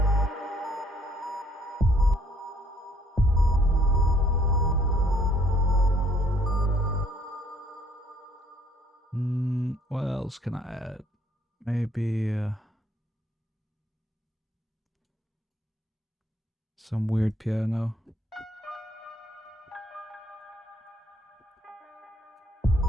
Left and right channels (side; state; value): both; normal; correlation 0.64